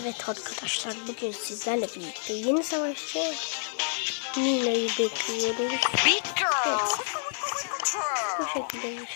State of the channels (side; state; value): right; silent; 59 dB below the other